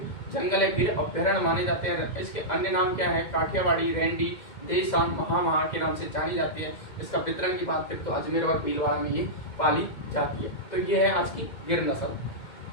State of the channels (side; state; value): right; late; 2.1 ms